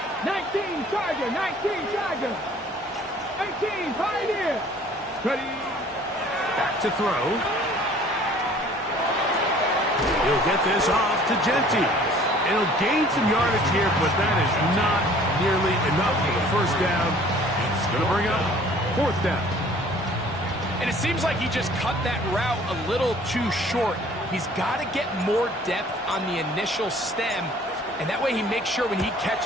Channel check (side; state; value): both; normal; correlation 0.53